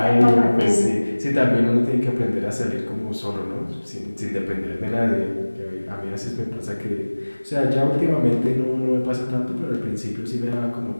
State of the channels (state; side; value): inverted; both; correlation -1.00